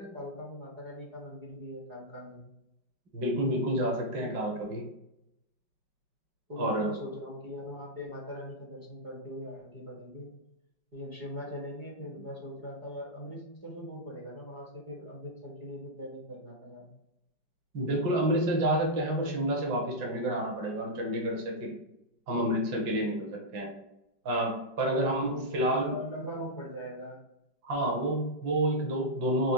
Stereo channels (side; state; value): left; late; 5.2 ms